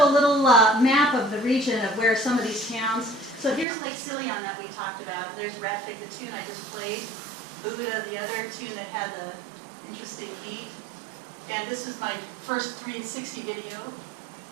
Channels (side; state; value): left; drops out; at 3.7 s